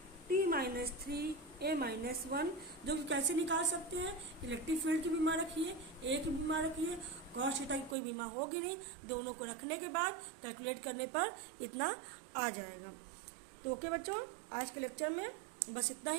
A-1, जो कि कैसे निकाल सकते हैं, इलेक्ट्रिक फील्ड की बीमा रखिए, ए की बीमा रखिए, कॉस थीटा की कोई बीमा होगी नहीं, दोनों को रखने के बाद कैलकुलेट करने पर इतना आ जाएगा। तो ओके बच्चों, आज के लेक्चर में बस इतना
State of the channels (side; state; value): left; drops out; at 8.0 s